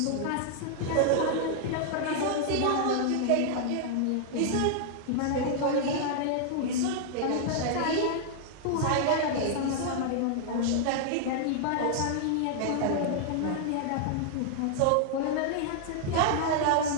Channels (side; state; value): both; different; correlation -0.01